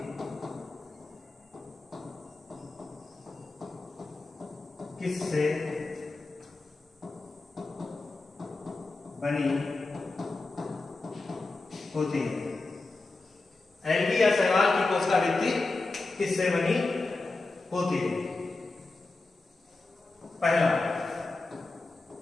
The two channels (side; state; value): right; quieter; 3.4 dB